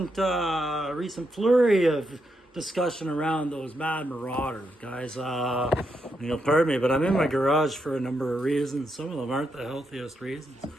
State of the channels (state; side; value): normal; both; correlation 0.82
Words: flurry of discussion around those mad marauders, guys. Pardon me, but I'm in my garage for a number of reasons. Some of them aren't the healthiest reasons. You